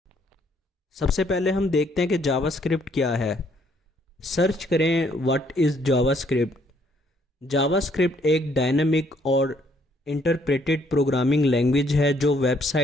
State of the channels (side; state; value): both; normal; correlation 0.67